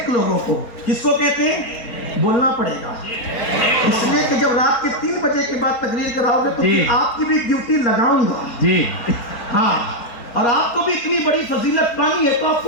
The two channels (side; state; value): right; late; 4.2 ms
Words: لوگوں کو. کس کو کہتے ہیں؟ بولنا پڑے گا, اس لیے کہ جب رات کے 3 بجے کے بعد تقریر کراؤ گے تو پھر آپ کی بھی ڈیوٹی لگاؤں گا. جی ہاں, اور آپ کو بھی اتنی بڑی فضیلت پانی ہے تو آپ